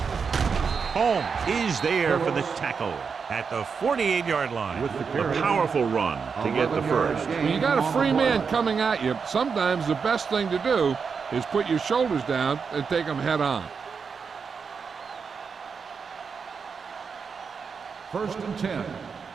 Holmes is there for the tackle at the 48-yard line. A powerful run to get the first. When you got a free man coming at you, sometimes the best thing to do is put your shoulders down and take them head on. First and 10.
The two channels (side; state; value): left; quieter; 5.7 dB